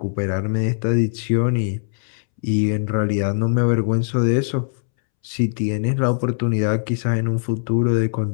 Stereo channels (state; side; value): silent; right; 65 dB below the other